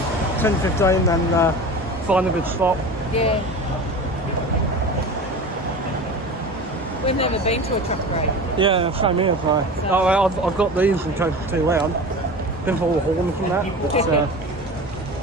10:15 and find a good spot. Yeah. We've never been to a truck parade. Yeah, same here. So I've got these in case it's too loud. Been for all the horns and that.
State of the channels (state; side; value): normal; both; correlation 0.33